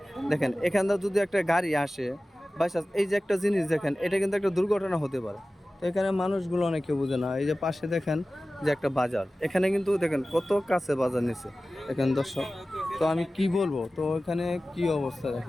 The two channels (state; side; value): normal; both; correlation 0.96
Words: দেখেন এখানটা যদি একটা গাড়ি আসে বাইচান্স, এই যে একটা জিনিস দেখেন, এটা কিন্তু একটা দুর্ঘটনা হতে পারে। তো এখানে মানুষগুলো অনেকে বুঝে না। এই যে পাশে দেখেন যে একটা বাজার, এখানে কিন্তু দেখেন কত কাছে বাজার নিচ্ছে দেখেন দর্শক। তো আমি কি বলবো, তো এখানে কি অবস্থা